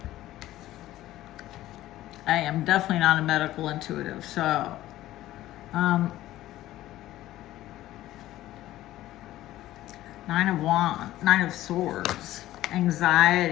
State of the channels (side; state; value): right; quieter; 14.9 dB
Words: I am definitely not a medical intuitive, so Nine of Swords,